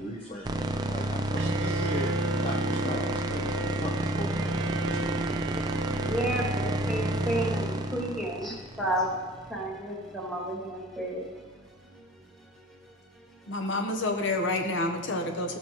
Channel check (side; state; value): both; normal; correlation 0.46